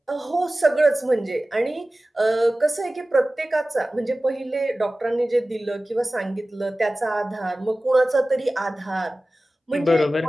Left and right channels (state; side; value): normal; both; correlation 0.97